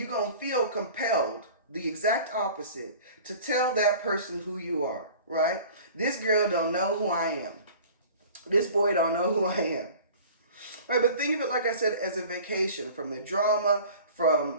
feel compelled, the exact opposite, to tell that person who you are, right? This girl don't know who I am. This boy don't know who I am. Right, but think of it, like I said, as a vacation from the drama,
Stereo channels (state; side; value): inverted; both; correlation -0.43